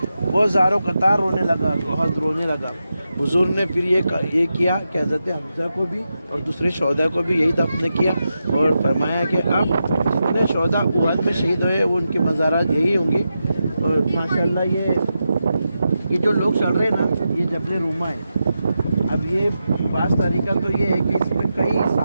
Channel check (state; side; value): inverted; both; correlation -0.88